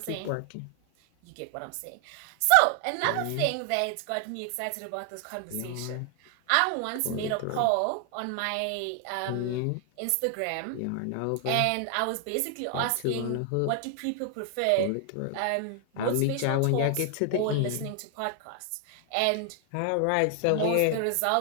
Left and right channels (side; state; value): both; different; correlation 0.00